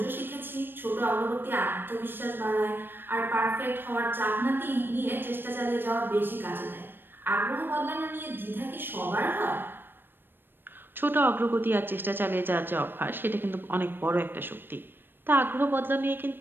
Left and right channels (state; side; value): late; left; 0.097 ms